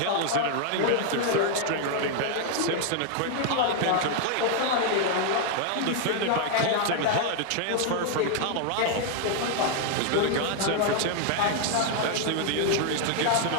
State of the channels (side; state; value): both; different; correlation 0.00